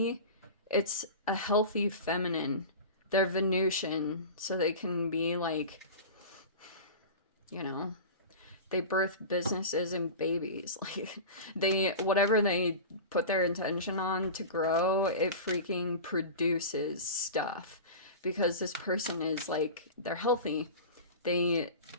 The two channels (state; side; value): inverted; both; correlation -0.31